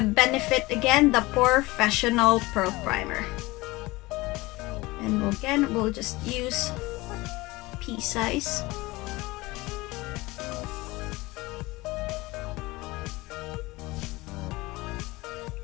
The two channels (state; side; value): quieter; right; 21.3 dB